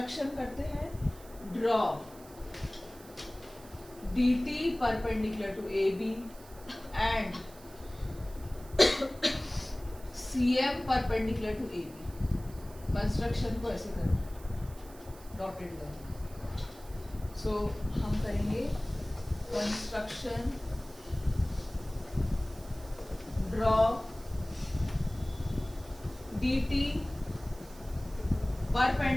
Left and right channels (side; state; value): right; noise; hiss, 21 dB below the sound